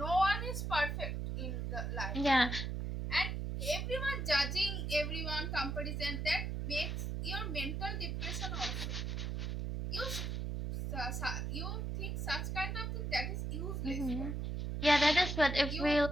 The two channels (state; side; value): noise; right; hum, 2 dB below the sound